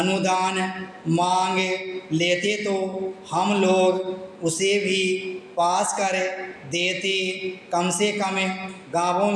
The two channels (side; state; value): both; identical; correlation 1.00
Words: मांग लेते तो हम लोग उसे भी पास कर देते। कम से कम गांवों